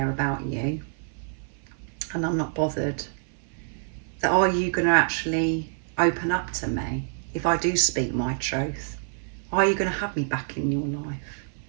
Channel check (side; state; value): left; silent; 56 dB below the other